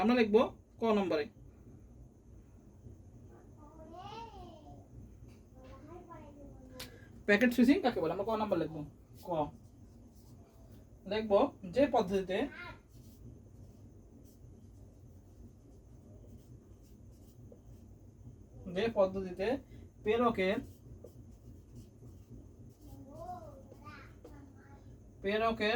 আমরা লিখবো ক নম্বরে। প্যাকেট সুইচিং কাকে বলে আমরা ক নাম্বার লিখবো। ক লিখবো যে পদ্ধতিতে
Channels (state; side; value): identical; both; correlation 1.00